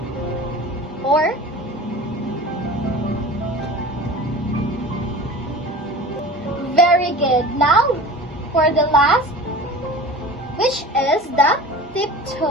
Or very good. Now for the last, which is the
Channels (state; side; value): normal; both; correlation 0.37